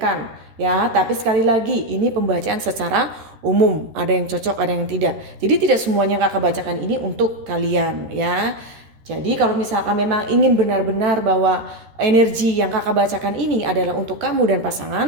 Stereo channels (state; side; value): late; left; 13 ms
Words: ya. Tapi sekali lagi ini pembacaan secara umum, ada yang cocok, ada yang tidak. Jadi tidak semuanya kakak bacakan ini untuk kalian ya. Jadi kalau misalkan memang ingin benar-benar bahwa energi yang kakak bacakan ini adalah untuk kamu dan